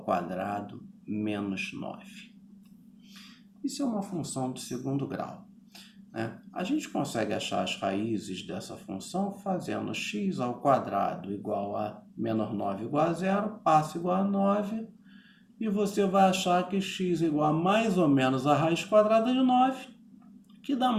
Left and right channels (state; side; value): identical; both; correlation 1.00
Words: quadrado menos 9. Isso é uma função do segundo grau, né? A gente consegue achar as raízes dessa função fazendo x ao quadrado igual a menos 9 igual a zero, passa igual a 9, e você vai achar que x igual a mais ou menos a raiz quadrada de 9, que dá